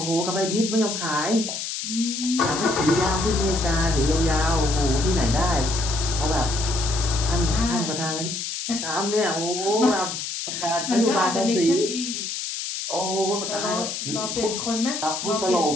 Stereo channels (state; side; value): noise; left; hiss, 5 dB below the sound